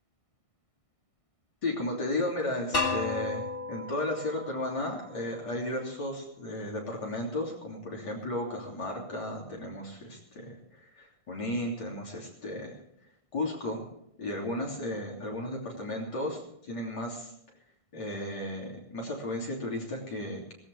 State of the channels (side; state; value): right; late; 1.6 ms